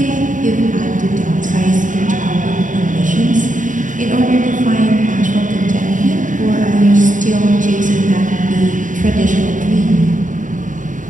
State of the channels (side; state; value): left; late; 0.37 ms